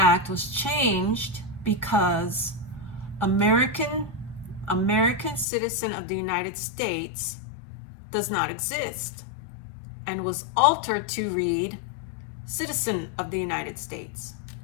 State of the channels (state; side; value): drops out; right; at 5.5 s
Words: was changed because American citizen of the United States does not exist, and was altered to read citizen of the United States.